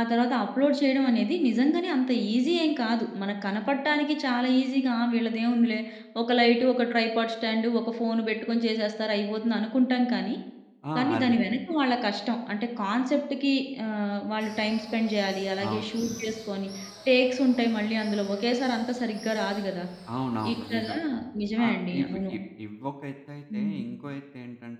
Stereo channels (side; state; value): both; identical; correlation 1.00